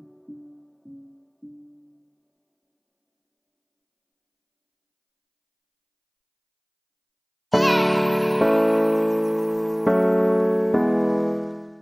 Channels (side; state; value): both; identical; correlation 1.00